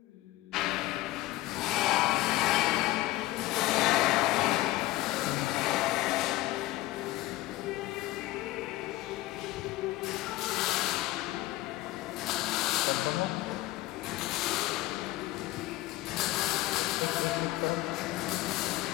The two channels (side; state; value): right; quieter; 17.6 dB